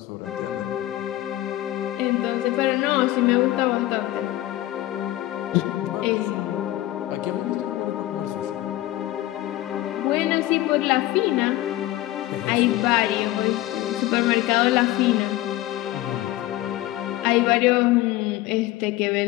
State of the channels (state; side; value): quieter; right; 15.8 dB